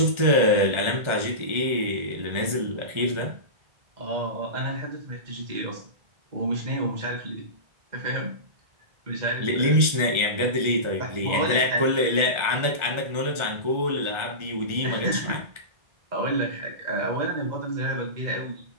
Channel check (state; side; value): late; left; 1.4 ms